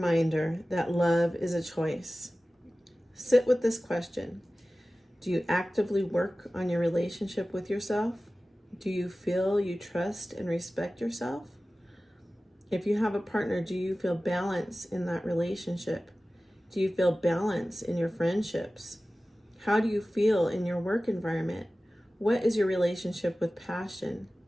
that love is a choice. Sit with this question. Do you actively work on your relationship with yourself? Do you feel you trust and respect yourself? If you have a partner, do you feel balance in that relationship? Do you feel balance in your friendships? How do you feel in your work environment? What is your relationship with passion?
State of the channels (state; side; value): normal; both; correlation 0.96